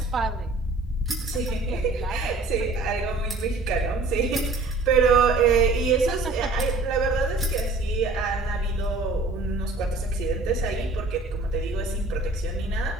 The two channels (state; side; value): quieter; left; 3.3 dB